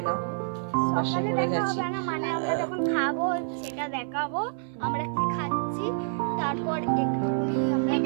নাও। বাসে করে গেছি, যখন খাবো সেটা দেখাবো আমরা কি খাচ্ছি, তারপর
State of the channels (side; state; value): left; silent; 60 dB below the other